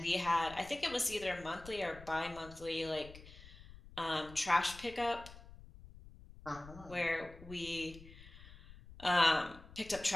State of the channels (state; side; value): noise; left; rumble, 18 dB below the sound